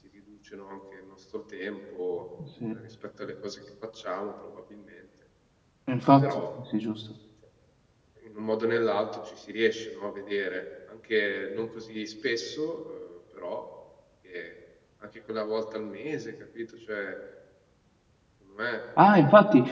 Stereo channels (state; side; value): identical; both; correlation 1.00